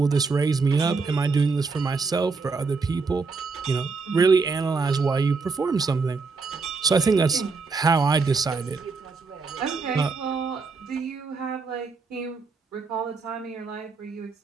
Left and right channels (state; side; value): quieter; left; 4.4 dB